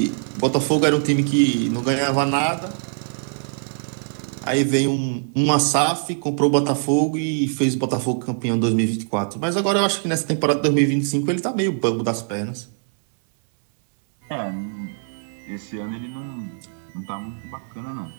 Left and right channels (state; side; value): silent; left; 64 dB below the other